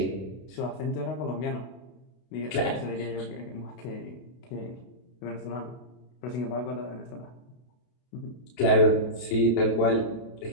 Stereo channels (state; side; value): late; right; 31 ms